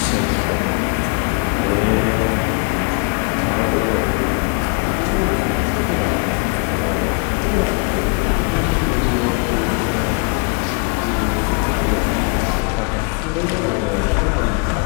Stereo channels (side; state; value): right; quieter; 35.2 dB